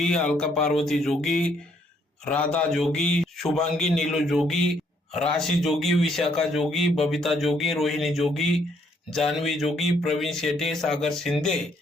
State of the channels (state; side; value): normal; both; correlation 0.69